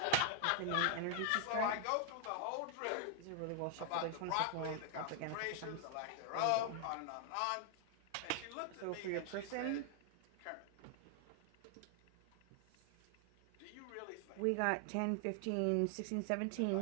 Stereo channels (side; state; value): both; different; correlation 0.00